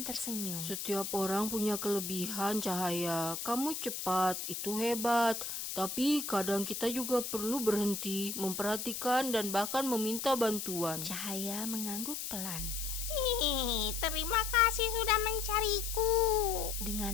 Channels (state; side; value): noise; left; hiss, 5 dB below the sound